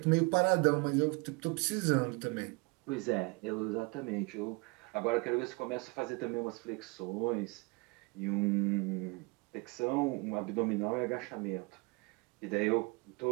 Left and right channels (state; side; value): quieter; left; 28.3 dB